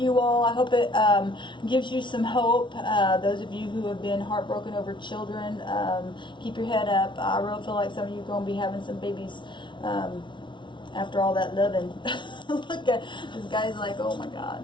all. I hope it gives you some hope. Those of you who have been heartbroken over children, keep your head up. I really feel like some of you are going to be having some babies after all that loving. Look at this guy's like, oh my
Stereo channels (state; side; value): late; right; 0.24 ms